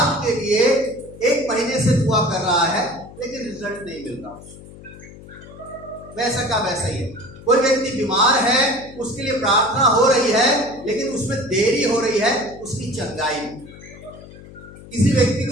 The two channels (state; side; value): noise; left; hum, 18 dB below the sound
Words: के लिए 1 महीने से दुआ कर रहा है लेकिन रिजल्ट नहीं मिल रहा, वैसा का वैसा ही है। कोई व्यक्ति बीमार है, उसके लिए प्रार्थना हो रही है लेकिन उसमें देरी हो रही है उसकी चंगाई में। किसी व्यक्ति